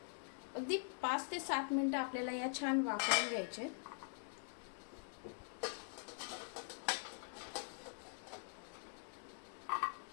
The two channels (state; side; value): silent; right; digital silence